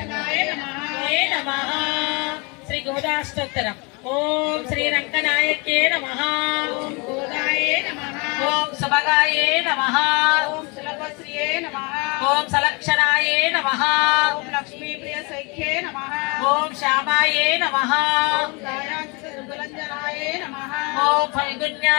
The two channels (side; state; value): right; quieter; 29.6 dB